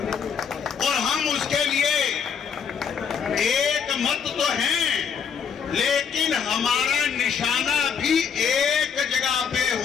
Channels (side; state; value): right; quieter; 6.9 dB